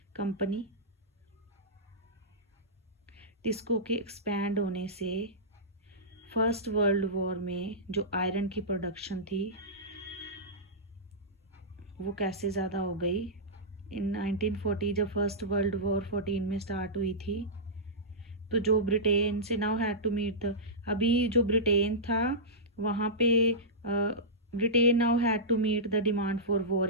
Company. TISCO के एक्सपैंड होने से फर्स्ट वर्ल्ड वॉर में जो आयरन की प्रोडक्शन थी वो कैसे ज़्यादा हो गई। इन 1940 जब फर्स्ट वर्ल्ड वॉर 14 में स्टार्ट हुई थी, तो जो ब्रिटेन से नाउ हैड टू मीट अभी जो ब्रिटेन था वहाँ पे Britain now had to meet the demand for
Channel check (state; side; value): normal; both; correlation -0.15